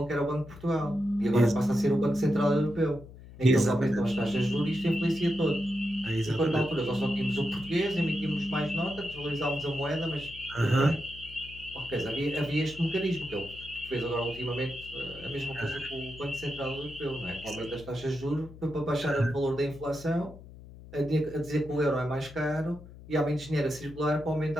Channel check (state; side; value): noise; left; hum, 17 dB below the sound